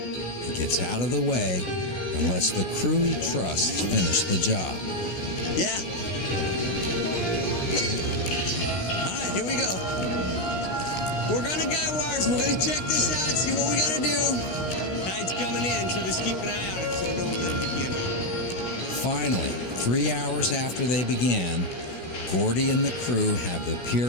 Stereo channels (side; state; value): right; late; 16 ms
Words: He gets out of the way and lets the crew he trusts finish the job. Yeah. All right, here we go. We're gonna guy wires. We're gonna check this out, see what we gotta do. Tide's coming in, so just keep an eye on it so don't let it begin. Finally, 3 hours after they began, Gordy and the crew have the